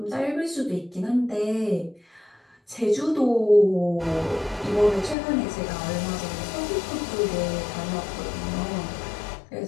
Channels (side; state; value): right; drops out; at 5.2 s